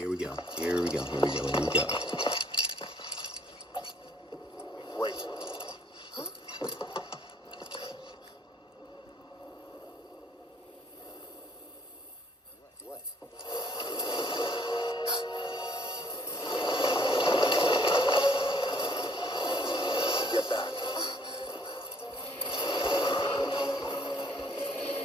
we go. Here we go. Here we go. Here we go. Wait. What? Get back.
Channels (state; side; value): normal; both; correlation 0.63